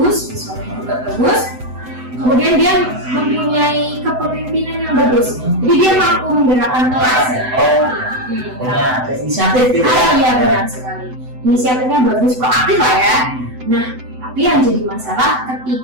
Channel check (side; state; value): left; late; 7.9 ms